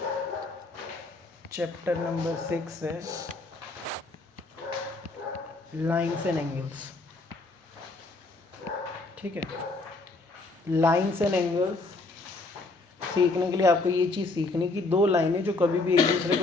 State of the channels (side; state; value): right; quieter; 3.3 dB